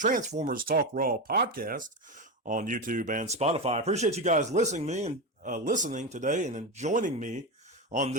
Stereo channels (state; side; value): normal; both; correlation 0.16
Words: Talk Raw podcast on YouTube and Spotify. I appreciate you guys listening today and joining me on